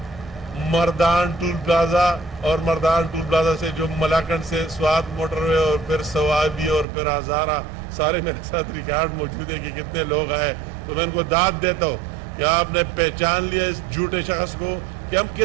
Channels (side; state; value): left; drops out; at 6.9 s